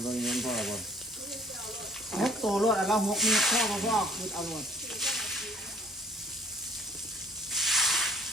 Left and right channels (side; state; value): both; normal; correlation 0.57